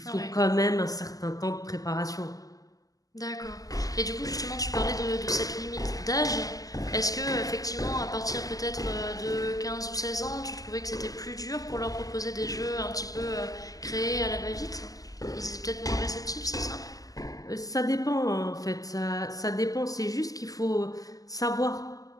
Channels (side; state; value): right; late; 0.17 ms